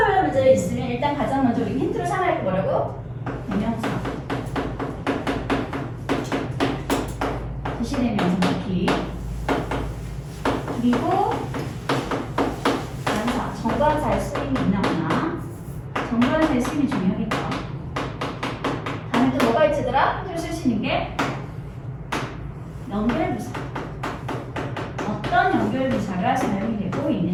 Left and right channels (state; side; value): identical; both; correlation 1.00